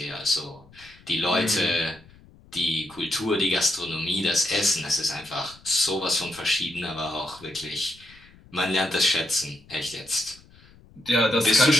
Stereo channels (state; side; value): noise; left; rumble, 25 dB below the sound